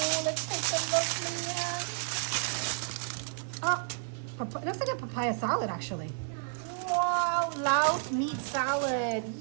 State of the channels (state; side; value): silent; left; 57 dB below the other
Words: let's take a look, man. Oh, it looks like a papaya salad, actually. Wow, Laos meat salad.